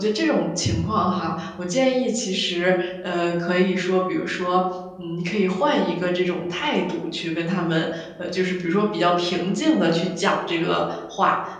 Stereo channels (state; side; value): identical; both; correlation 1.00